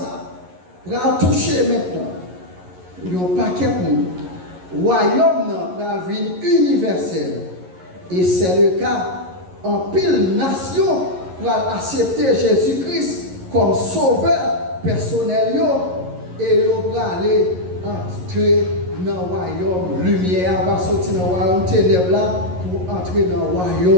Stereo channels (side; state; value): left; late; 11 ms